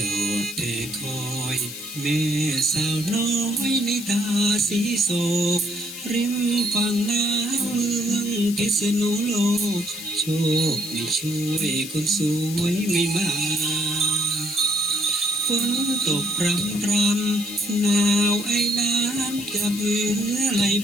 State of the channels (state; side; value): noise; left; hiss, 10 dB below the sound